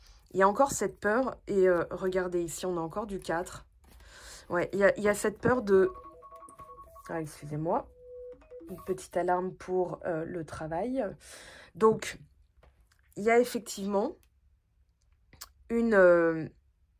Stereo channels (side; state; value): both; identical; correlation 1.00